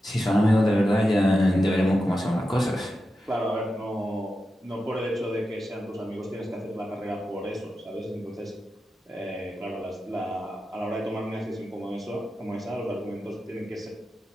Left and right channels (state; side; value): normal; both; correlation 0.90